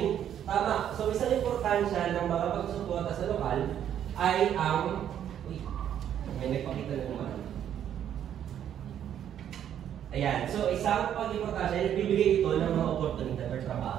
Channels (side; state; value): left; quieter; 9.9 dB